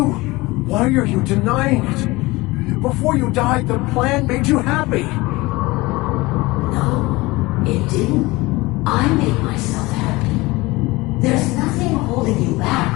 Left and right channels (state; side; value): quieter; right; 21.6 dB